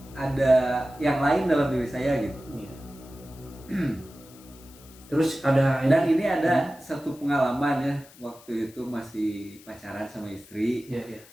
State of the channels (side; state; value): left; noise; hiss, 23 dB below the sound